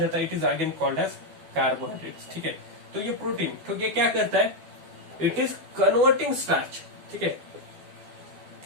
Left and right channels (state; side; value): late; left; 12 ms